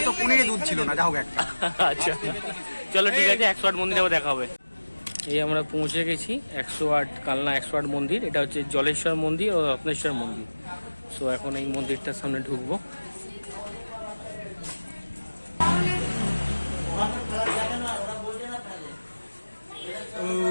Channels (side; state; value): both; inverted; correlation -1.00